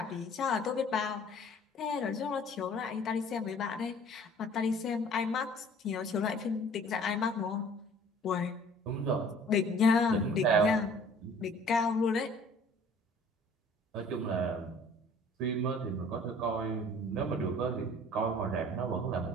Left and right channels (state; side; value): normal; both; correlation 0.52